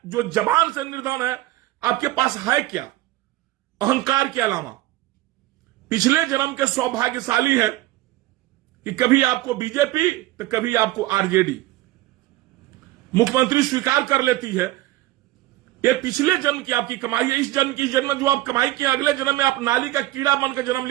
जो जबान से निर्धन है, आपके पास है क्या अहंकार के अलावा? पिछले जन्म के सौभाग्यशाली है कि कभी आपको बीजेपी तो कभी आपको आरजेडी मुख्यमंत्री स्वीकार कर लेती है। ये पिछले जन्म की आपकी कमाई है। इस जन्म की जन्म जो आप कमाई की, अगले जन्म में आप नाली का कीड़ा बनकर जन्म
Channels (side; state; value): left; quieter; 17.0 dB